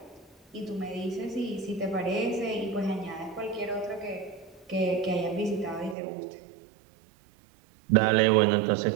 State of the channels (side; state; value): left; drops out; at 6.0 s